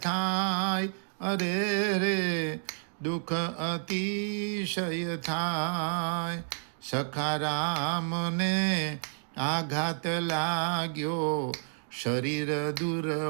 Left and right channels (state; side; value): silent; left; 58 dB below the other